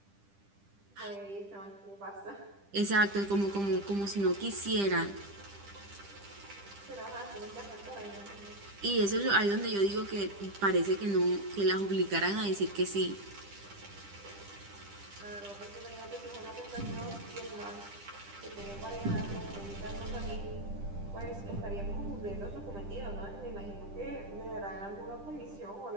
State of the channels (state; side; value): late; left; 10 ms